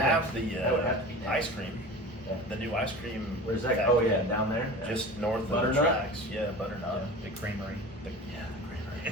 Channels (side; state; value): both; normal; correlation 0.35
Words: have the That would have to be next. ice cream, Yeah. the new ice cream. Where's that? factory, Oh yeah, down there. Yeah. just north of the Butternut? tracks. Yeah, Butternut. The creamery. The